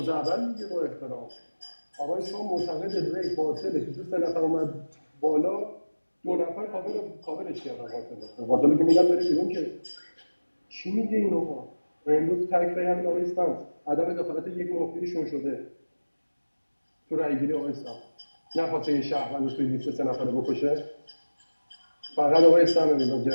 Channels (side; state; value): both; inverted; correlation -1.00